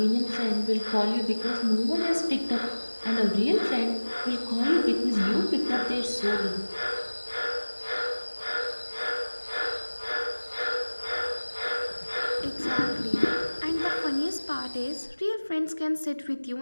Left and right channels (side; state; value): both; inverted; correlation -1.00